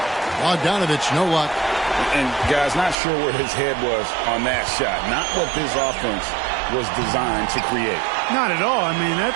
Bogdanovich, no luck. And guys, not sure where his head was on that shot. Not what this offense was designed to create. Not at all. I mean,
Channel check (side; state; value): left; drops out; at 3.0 s